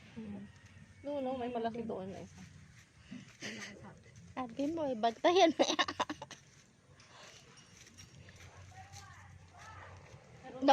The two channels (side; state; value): both; identical; correlation 1.00